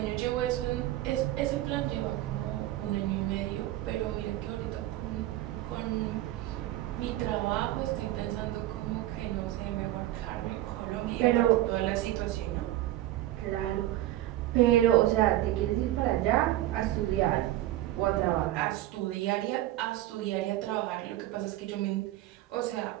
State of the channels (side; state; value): left; quieter; 15.0 dB